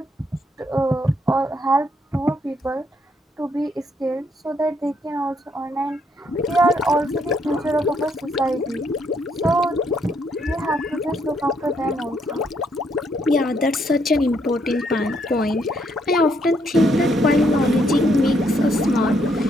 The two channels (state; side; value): normal; both; correlation 0.73